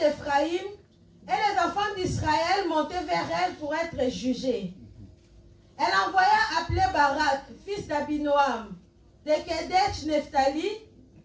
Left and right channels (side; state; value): both; identical; correlation 1.00